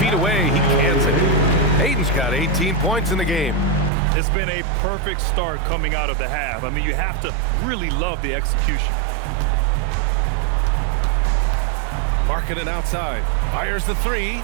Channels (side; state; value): left; drops out; at 3.9 s